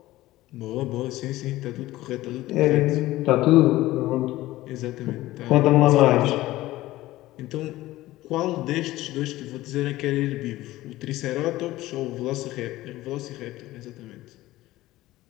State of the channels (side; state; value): right; quieter; 16.8 dB